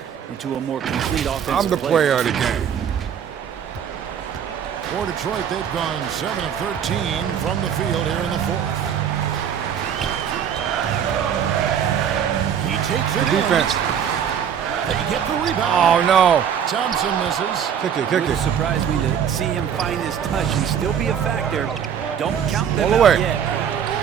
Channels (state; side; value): quieter; left; 8.4 dB